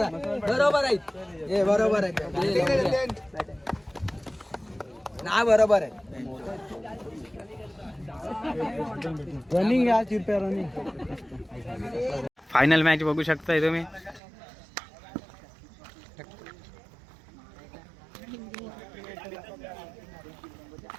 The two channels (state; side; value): drops out; left; at 14.2 s